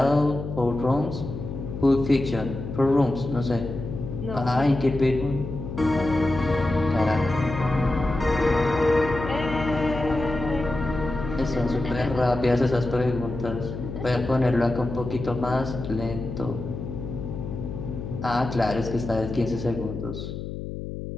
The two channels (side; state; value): left; noise; hum, 7 dB below the sound